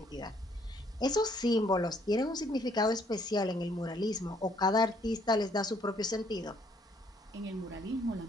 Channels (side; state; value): both; normal; correlation 0.66